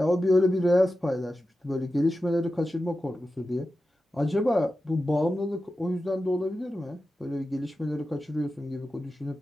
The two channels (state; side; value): normal; both; correlation 0.92